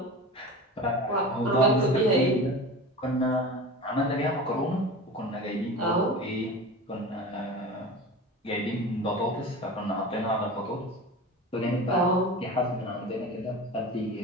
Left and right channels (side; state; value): both; normal; correlation 0.32